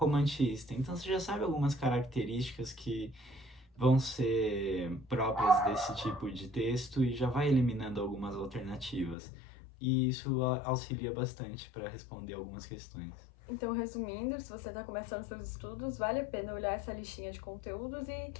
Então você já sabe algumas características que vão ser próprias desse tipo de texto e já vai eliminando algumas alternativas. E isso auxilia bastante para responder algumas questões. Então, resumindo, se você está começando seus estudos, vale a pena olhar essa listinha de conteúdos e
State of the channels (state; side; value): drops out; right; at 9.2 s